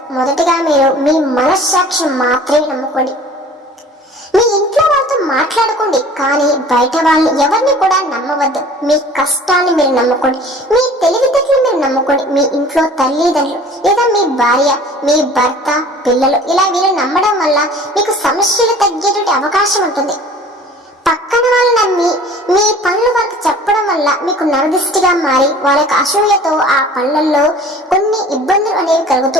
మొదటిగా మీరు మీ మనస్సాక్షి మాత్రమే నమ్ముకోండి. మీ ఇంట్లో ఇంట్లో వాళ్ళతో మాట్లాడుకోండి, కానీ బయట వాళ్ళని ఎవరిని కూడా నమ్మవద్దు. మీ కష్టాన్ని మీరు నమ్ముకోండి, మీ తెలివితేటలు మీరు నమ్ముకోండి. మీ ఇంట్లో తల్లిదండ్రులు లేదా మీ భార్య, మీ భర్త, పిల్లలు ఇలా వీళ్ళు నమ్మడం వల్ల మీకు సమస్యలు తగ్గేటువంటి అవకాశం ఉంటుంది. పక్కన వాళ్ళు నమ్మి మీ పనులు వాళ్ళకి చెప్పడం వల్ల మీకు నరదిష్టిగా మారి వాళ్ళ యొక్క అసూయతో ఆ పనులలో కొన్ని ఇబ్బందులు అనేవి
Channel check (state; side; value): normal; both; correlation 0.47